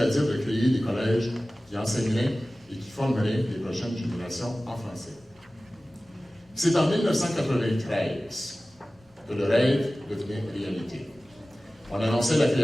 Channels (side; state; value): both; normal; correlation 0.97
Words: de créer des collèges qui enseigneraient et qui formeraient les prochaines générations en français. C'est en 1993 que le rêve devenait réalité. On annonçait la